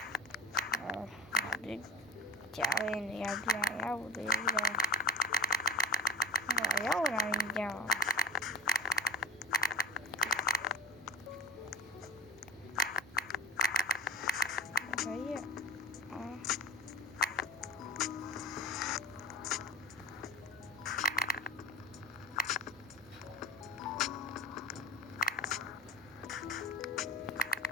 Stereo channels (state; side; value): normal; both; correlation 0.39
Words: ကြာရင်ရပြရောက်သေးတယ်ရောက်လာရင်ကြောက်